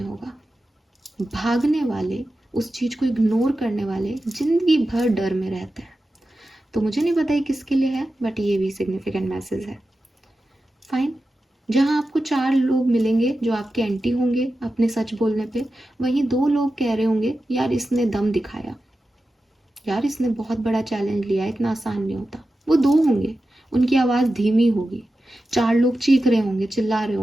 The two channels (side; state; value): both; normal; correlation 0.93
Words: होगा। भागने वाले, उस चीज को इग्नोर करने वाले जिंदगी भर डर में रहते हैं। तो मुझे नहीं पता ये किसके लिए है, बट ये भी सिग्निफिकेंट मैसेज है। फाइन, जहाँ आपको 4 लोग मिलेंगे जो आपके एंटी होंगे अपने सच बोलने पे, वहीं 2 लोग कह रहे होंगे यार इसने दम दिखाया, यार इसने बहुत बड़ा चैलेंज लिया, इतना आसान नहीं होता। वो 2 होंगे, उनकी आवाज़ धीमी होगी, 4 लोग चीख रहे होंगे, चिल्ला रहे